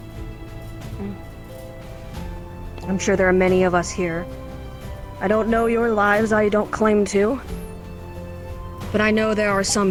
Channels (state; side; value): identical; both; correlation 1.00